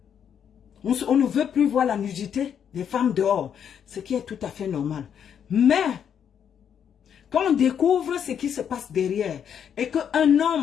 On ne veut plus voir la nudité des femmes dehors, ce qui est tout à fait normal. Mais, quand on découvre ce qui se passe derrière, et qu'un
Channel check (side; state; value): right; quieter; 8.3 dB